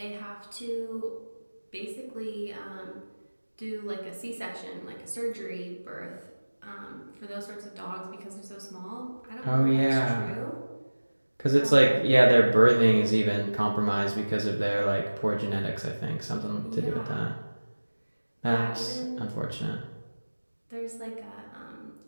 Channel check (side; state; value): both; inverted; correlation -1.00